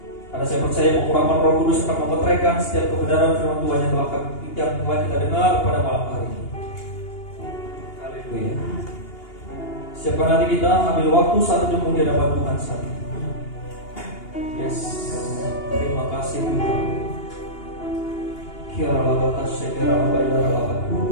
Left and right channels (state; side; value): late; right; 2.8 ms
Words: Karena saya percaya pengurapan Roh Kudus akan memeteraikan setiap kebenaran firman Tuhan yang telah kita dengar pada malam hari ini. Haleluya. Siapkan hati kita, ambil waktu 1 jam di hadapan Tuhan saat ini. Yes, terima kasih Tuhan. Kira labatas sekira labayara